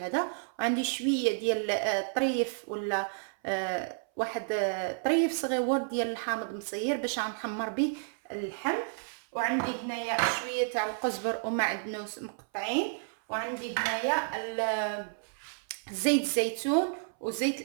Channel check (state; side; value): silent; left; 57 dB below the other